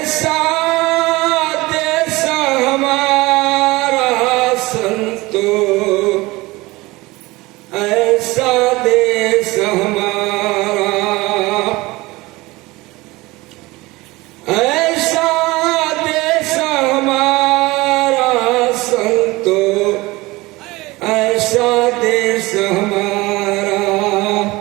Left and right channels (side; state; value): left; quieter; 21.2 dB